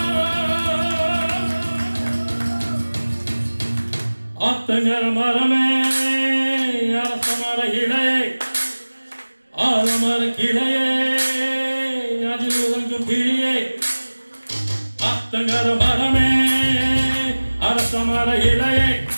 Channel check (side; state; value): both; inverted; correlation -1.00